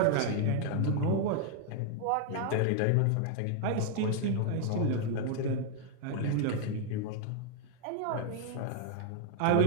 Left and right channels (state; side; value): different; both; correlation 0.00